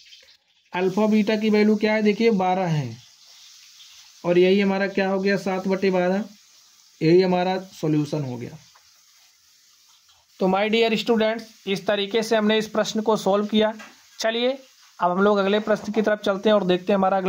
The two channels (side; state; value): both; identical; correlation 1.00